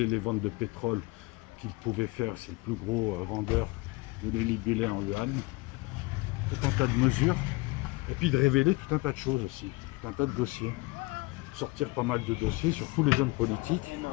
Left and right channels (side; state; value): right; quieter; 23.4 dB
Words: les ventes de pétrole qu'il pouvait faire, c'est le plus gros vendeur, de les libeller en yuan, tout un tas de mesures, et puis de révéler tout un tas de choses aussi, tout un tas de dossiers, sortir pas mal de dossiers sur tous les hommes politiques,